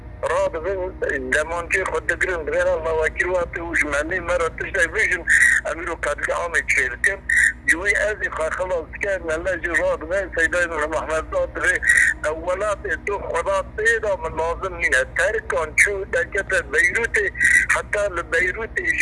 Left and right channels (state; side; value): identical; both; correlation 1.00